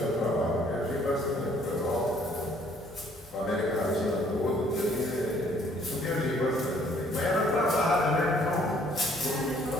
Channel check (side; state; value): both; normal; correlation 0.61